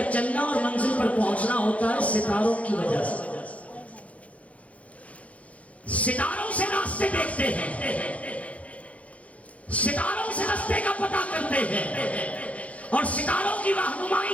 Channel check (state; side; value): late; right; 0.066 ms